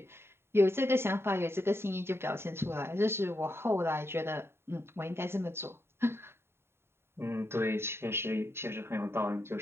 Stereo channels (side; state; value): left; late; 0.12 ms